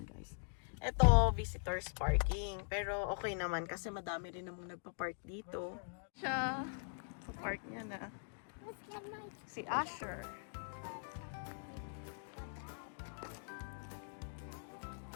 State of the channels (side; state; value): right; silent; digital silence